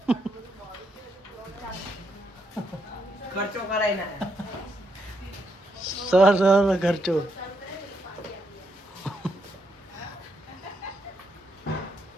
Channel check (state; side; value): normal; both; correlation 0.78